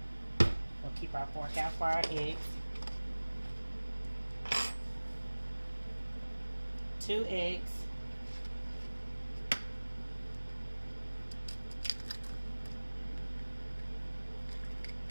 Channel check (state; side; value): inverted; both; correlation -1.00